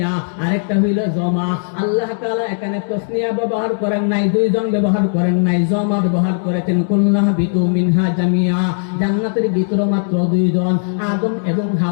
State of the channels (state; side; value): silent; right; digital silence